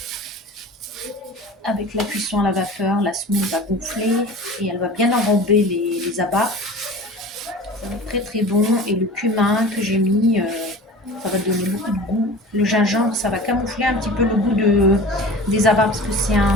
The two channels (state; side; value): normal; both; correlation 0.38